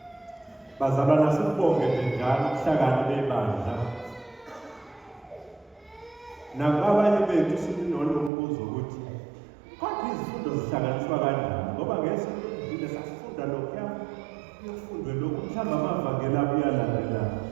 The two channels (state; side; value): drops out; left; at 8.3 s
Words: Bazalwana sibonge njalo ubuhlakani bebandla. Nabanye bethu sinolombuzo ukuthi kodwa izifundo zihlanganiswa kanjani ngoba ngesonto elidlule sasifunda lokho yofundwe lokhu mhlawumbe amavangeli abuyalandela